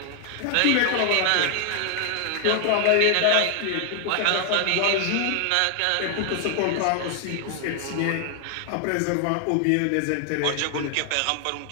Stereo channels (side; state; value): both; different; correlation 0.00